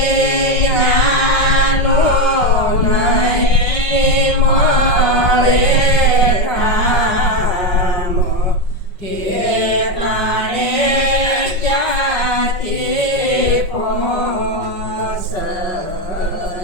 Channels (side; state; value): right; late; 5.5 ms